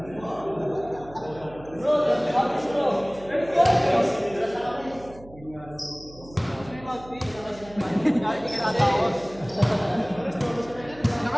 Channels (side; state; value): right; noise; hum, 20 dB below the sound